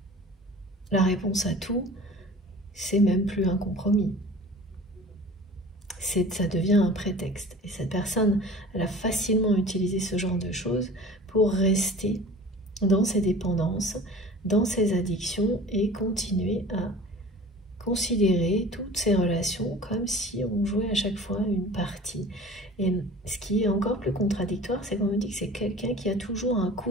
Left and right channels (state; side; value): normal; both; correlation 0.42